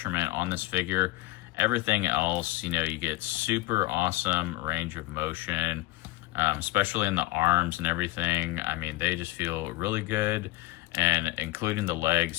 on this figure. Everything else, you know, you get super awesome range of motion, especially in the arms and everything. I mean, they just feel really good, and including the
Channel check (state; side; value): quieter; right; 19.4 dB